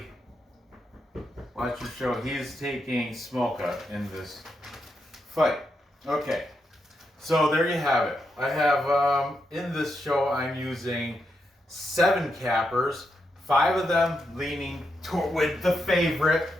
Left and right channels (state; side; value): normal; both; correlation 0.83